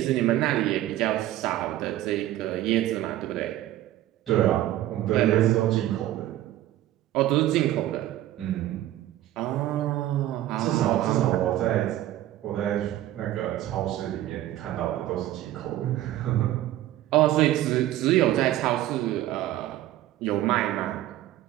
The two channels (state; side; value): quieter; left; 14.0 dB